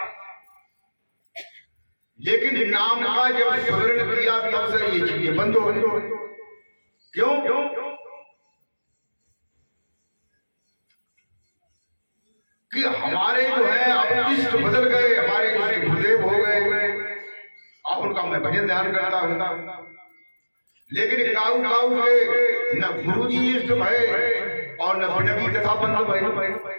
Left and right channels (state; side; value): inverted; both; correlation -1.00